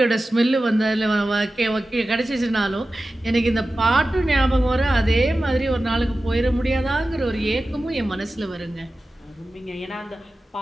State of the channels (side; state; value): both; normal; correlation 0.94